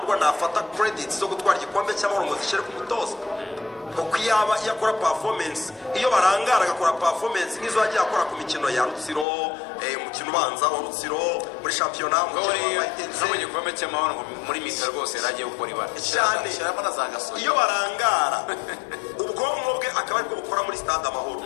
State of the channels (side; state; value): right; drops out; at 9.2 s